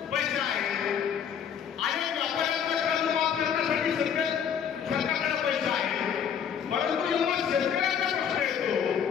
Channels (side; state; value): right; quieter; 8.0 dB